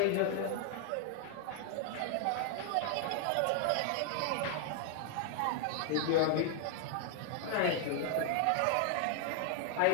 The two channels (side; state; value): both; different; correlation 0.00